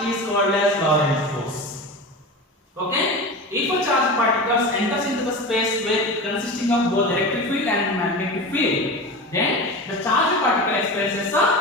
is called as Lorentz force. Okay? If a charged particles enters into the space with consisting of both electric field and magnetic field, then the charged particle experiences a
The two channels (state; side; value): normal; both; correlation 0.28